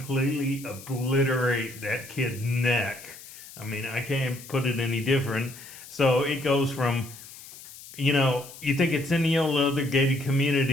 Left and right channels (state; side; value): noise; left; hiss, 17 dB below the sound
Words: obliterate that kid's neck. I mean, I can't put it any different. So it goes from, you think it's any old other gated